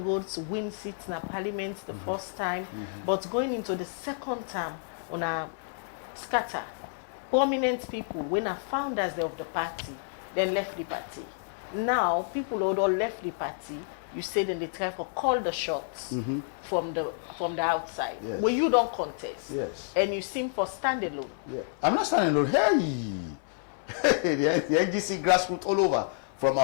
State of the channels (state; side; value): silent; right; 58 dB below the other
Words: win seats in parliament the first time, but going into the second term, una scatter. Prominent people, when are founders of the party, then left the party. Now, people who all left the party, you say then they try to call the shots from the outside. Yes. When you don't contest. Yes. And you seem for standalone. Yeah. I'm not standing alone. Hey! the NGC grassroots all over, from